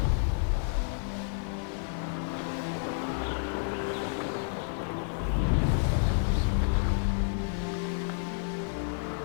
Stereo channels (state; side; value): silent; right; digital silence